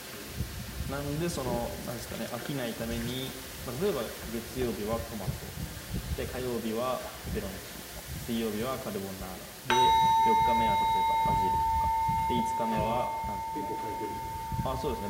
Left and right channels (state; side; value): identical; both; correlation 1.00